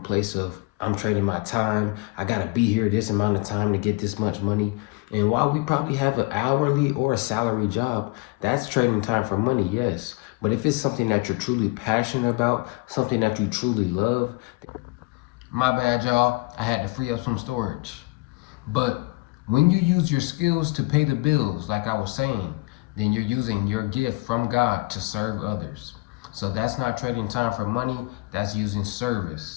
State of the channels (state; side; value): quieter; right; 24.9 dB